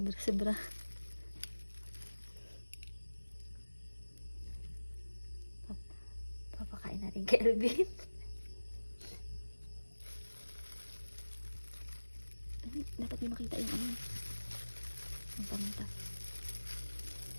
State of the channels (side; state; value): both; inverted; correlation -1.00